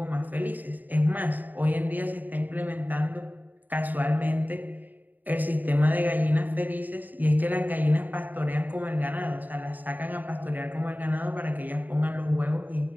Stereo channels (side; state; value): left; late; 0.085 ms